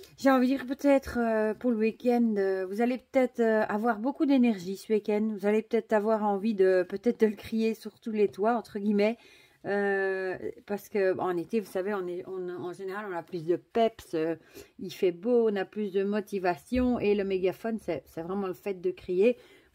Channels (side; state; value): both; identical; correlation 1.00